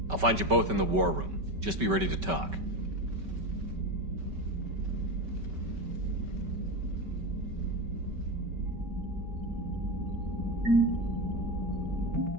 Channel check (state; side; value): late; left; 5.2 ms